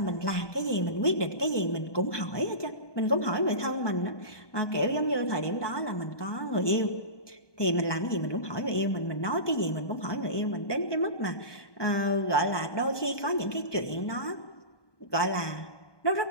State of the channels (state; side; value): late; right; 1.2 ms